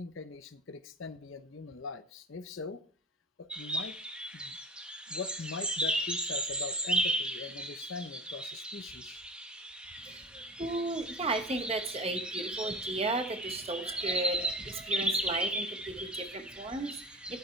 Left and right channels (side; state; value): both; normal; correlation 0.34